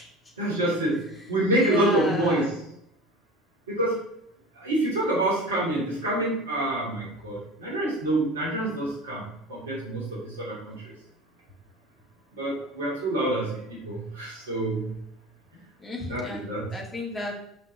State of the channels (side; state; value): both; normal; correlation 0.35